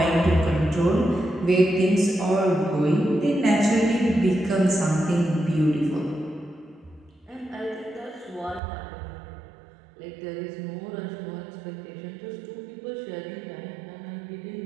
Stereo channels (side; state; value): left; drops out; at 8.6 s